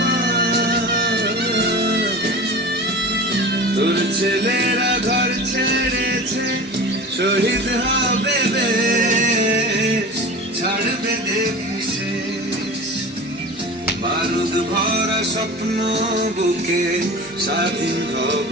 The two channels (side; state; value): both; normal; correlation 0.34